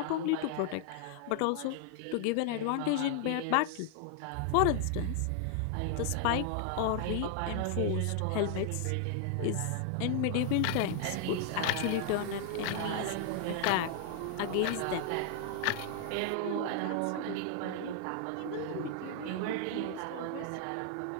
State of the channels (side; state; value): both; different; correlation 0.00